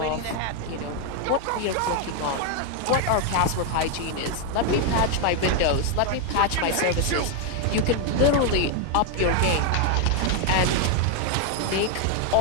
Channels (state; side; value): different; both; correlation 0.01